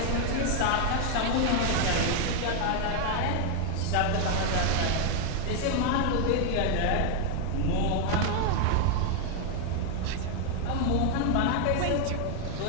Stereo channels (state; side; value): different; both; correlation 0.00